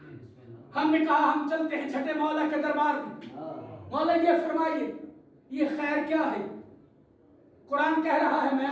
ہم نے کہا ہم چلتے ہیں چھٹے مولا کے دربار میں. مولا یہ فرمائیے یہ خیر کیا ہے؟ قرآن کہہ رہا ہے میں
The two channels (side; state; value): both; identical; correlation 1.00